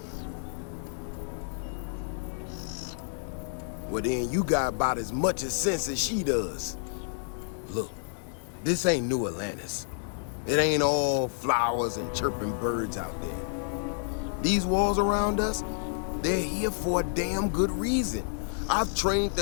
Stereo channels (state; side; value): silent; right; digital silence